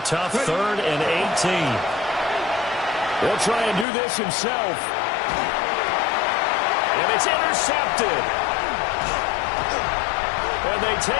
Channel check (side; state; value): right; drops out; at 3.9 s